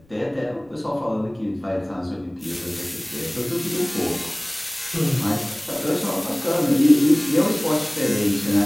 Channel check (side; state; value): left; noise; rumble, 30 dB below the sound